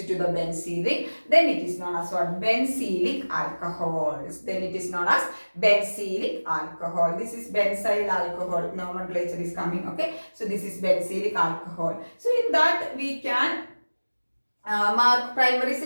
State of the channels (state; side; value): inverted; both; correlation -1.00